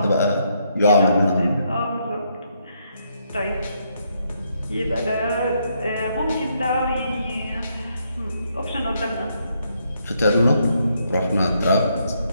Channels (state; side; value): inverted; both; correlation -0.75